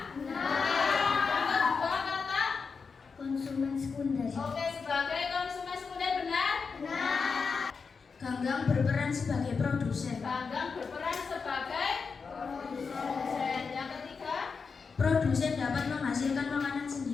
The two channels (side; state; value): right; quieter; 5.2 dB